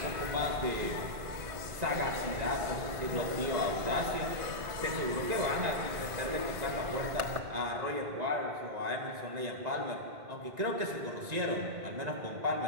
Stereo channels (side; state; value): left; late; 1.6 ms